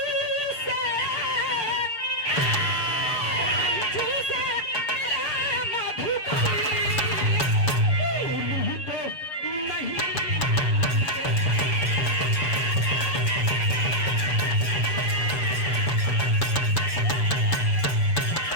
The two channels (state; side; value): late; right; 7.0 ms